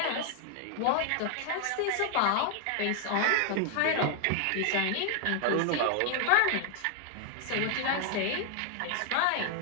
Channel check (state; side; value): different; both; correlation 0.00